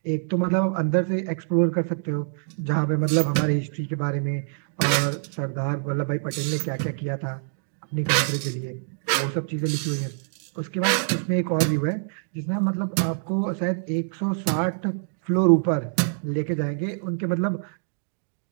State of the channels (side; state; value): left; silent; digital silence